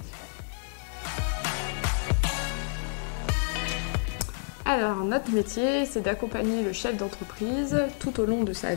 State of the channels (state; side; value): silent; right; 59 dB below the other